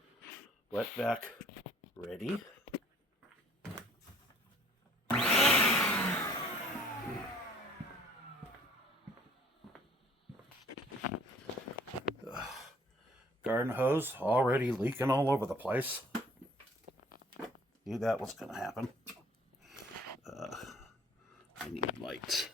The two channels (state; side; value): normal; both; correlation 0.55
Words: wet vac ready. Garden hose already leaking all over the place. Knew that was going to happen. I need lights.